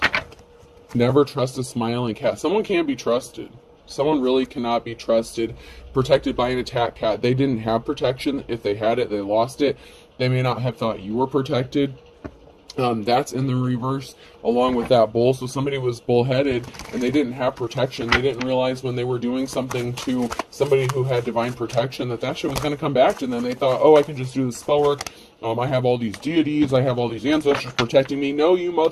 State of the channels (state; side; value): identical; both; correlation 1.00